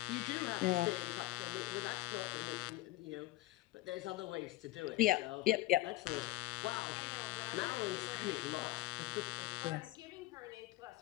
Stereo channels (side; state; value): right; quieter; 17.9 dB